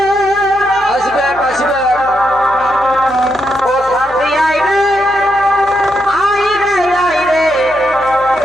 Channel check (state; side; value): noise; left; hum, 21 dB below the sound